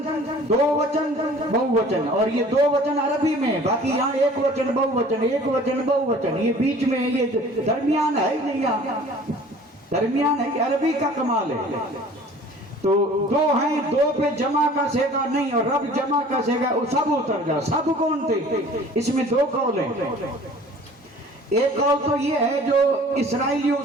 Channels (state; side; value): normal; both; correlation 0.48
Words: دو وچن، بہووچن، اور یہ دو وچن عربی میں، باقی یہاں ایک وچن بہووچن، ایک وچن بہووچن، یہ بیچ میں یہ درمیان ہے ہی نہیں، یہاں درمیان ہے، عربی کا کمال ہے۔ تو دو ہیں، دو پہ جمع کا سیگا نہیں، اور رب جمع کا سیگا، وہ سب اتر جا۔ سب کون تھے؟ اس میں دو قول ہیں۔ ایک قول تو یہ ہے جو اسرائیلیوں